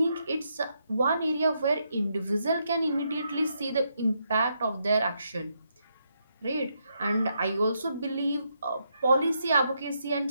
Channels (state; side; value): inverted; both; correlation -0.79